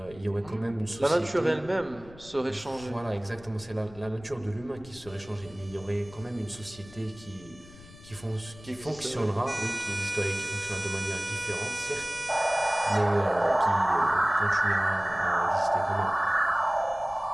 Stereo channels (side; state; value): left; noise; rumble, 20 dB below the sound